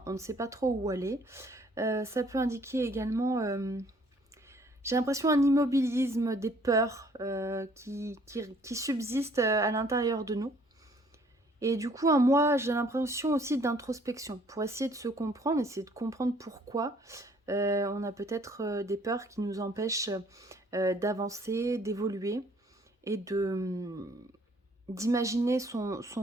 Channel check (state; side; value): normal; both; correlation 0.60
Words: on ne sait pas trop où aller. Ça peut indiquer également j'ai l'impression un immobilisme, des peurs qui subsistent à l'intérieur de nous. Et du coup, moi, j'ai l'impression aussi d'introspection pour essayer de se comprendre, essayer de comprendre pourquoi on a peut-être des peurs qui nous empêchent d'avancer, d'évoluer et d'imaginer